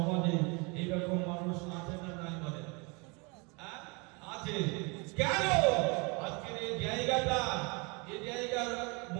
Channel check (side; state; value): left; quieter; 29.9 dB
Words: এইরকম মানুষ আছে না নাই বলেন? আছে। কেন? আজকের এই জায়গাটা, এই জায়গার